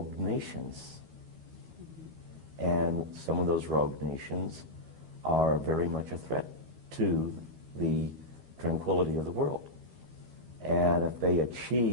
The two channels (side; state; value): left; late; 13 ms